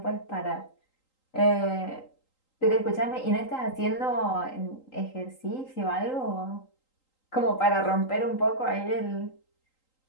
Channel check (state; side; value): late; right; 3.8 ms